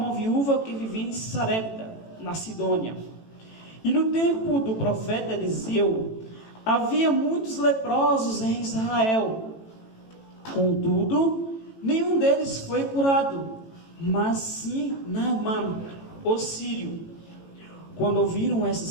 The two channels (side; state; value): right; late; 18 ms